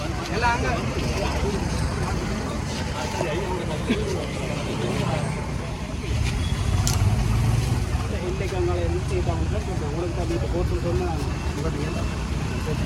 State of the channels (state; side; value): identical; both; correlation 1.00